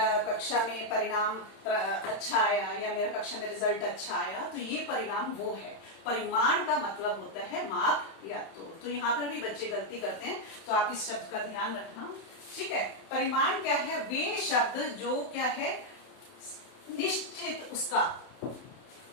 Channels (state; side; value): late; right; 31 ms